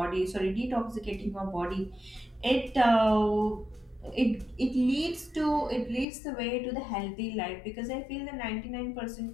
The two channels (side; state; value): right; drops out; at 6.1 s